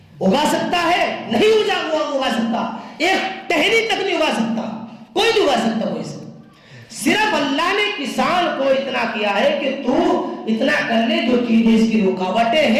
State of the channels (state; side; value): identical; both; correlation 1.00